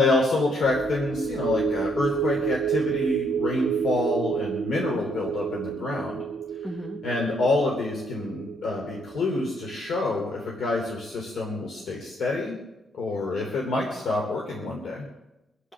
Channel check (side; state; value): both; normal; correlation 0.70